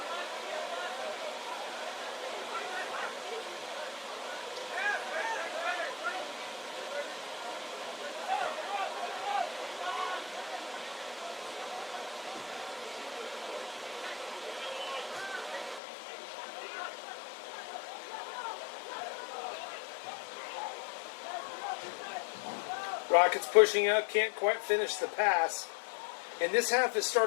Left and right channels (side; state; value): right; drops out; at 15.8 s